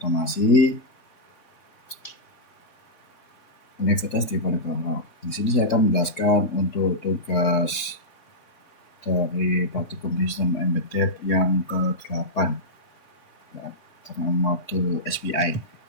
Universitas Diponegoro. Di sini saya akan menjelaskan untuk tugas dari praktikum sistem embedded yang ke-8 ya, dengan modul SPI.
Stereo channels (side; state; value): right; late; 3.8 ms